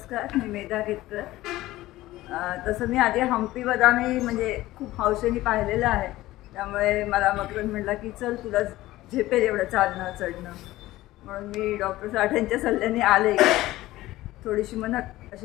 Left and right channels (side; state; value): right; quieter; 16.8 dB